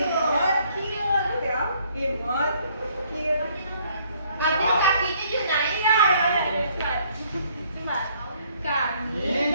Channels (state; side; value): inverted; both; correlation -0.64